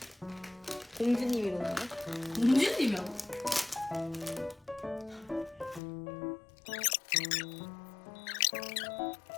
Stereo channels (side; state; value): right; drops out; at 5.8 s